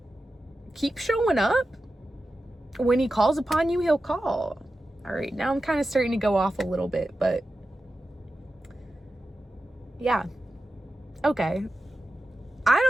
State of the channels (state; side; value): normal; both; correlation 0.92